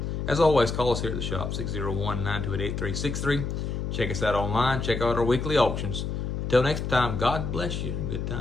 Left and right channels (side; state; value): left; noise; hum, 3 dB below the sound